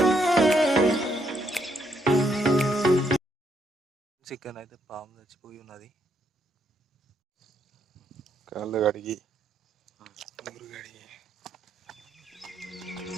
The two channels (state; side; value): normal; both; correlation 0.75